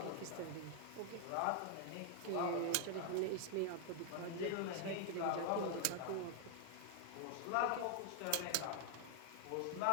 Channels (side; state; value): both; different; correlation 0.00